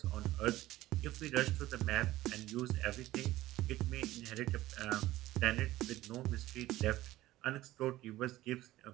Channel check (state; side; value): quieter; left; 16.1 dB